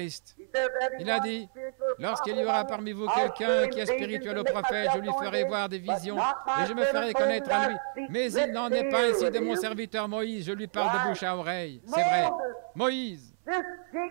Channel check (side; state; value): left; silent; 58 dB below the other